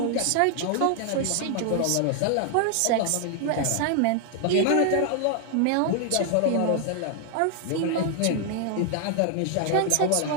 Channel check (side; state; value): both; different; correlation 0.00